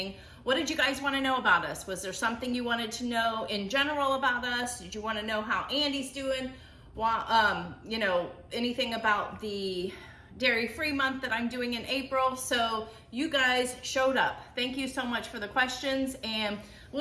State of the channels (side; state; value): both; identical; correlation 1.00